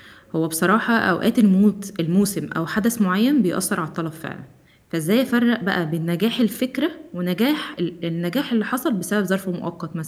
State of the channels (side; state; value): both; identical; correlation 1.00